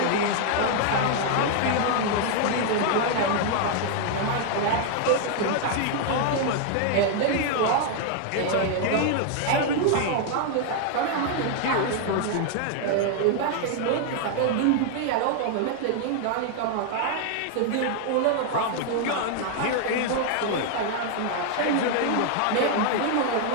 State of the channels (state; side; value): different; both; correlation 0.00